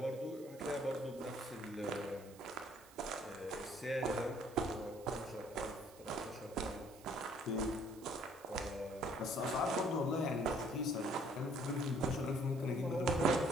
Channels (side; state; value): right; noise; hiss, 22 dB below the sound